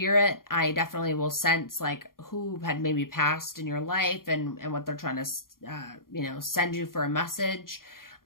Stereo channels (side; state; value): right; late; 0.91 ms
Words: I definitely will sense like who had maybe passed in your life and what they're trying to, you know, send you for a message.